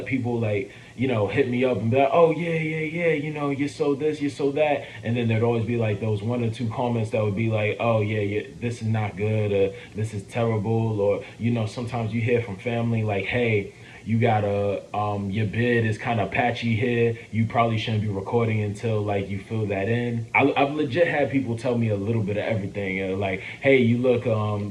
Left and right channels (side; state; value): both; identical; correlation 1.00